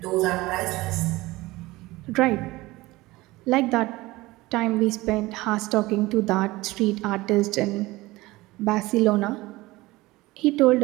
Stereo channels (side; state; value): left; quieter; 19.8 dB